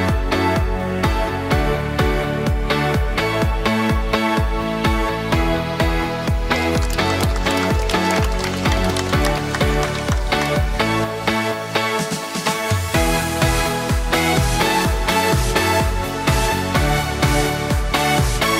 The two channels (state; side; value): identical; both; correlation 1.00